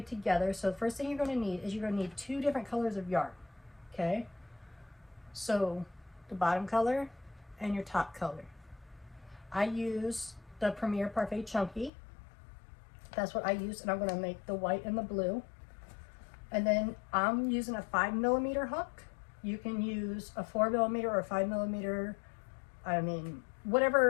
together. So the first thing you're going to need is you're going to need 2 different colors of yarn. Okay? So the bottom color and your top color. I use the Premier Parfait Chunky. That's what I use, and I'm going to make the white and the blue. And then I'm using a 5mm hook. You can use a 4mm or a 5mm. I mean,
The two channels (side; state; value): right; drops out; at 11.9 s